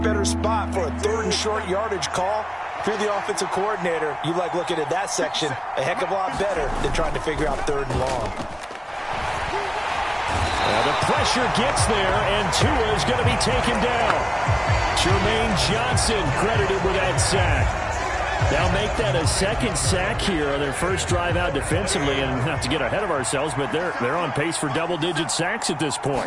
better spot for a 3rd and short yardage call. If you're the offensive coordinator, you like looking at that section a heck of a lot better than trying to figure out 3rd and long. The pressure gets there, and Tua is going to be taken down. Jermaine Johnson credited with that sack. They'll make that a 2nd sack here on their first drive out defensively, and not to get ahead of ourselves, but they're on pace for double-digit sacks at this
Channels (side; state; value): both; identical; correlation 1.00